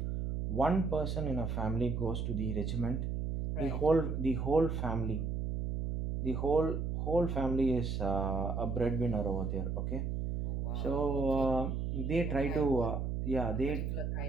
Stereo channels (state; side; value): noise; right; hum, 1 dB below the sound